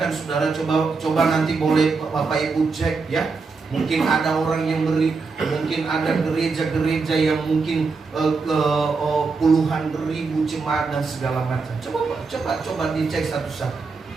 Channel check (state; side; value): quieter; left; 4.5 dB